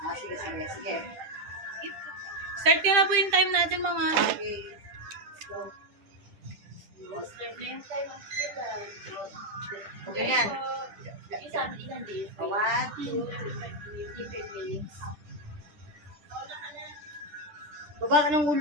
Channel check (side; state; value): left; late; 10 ms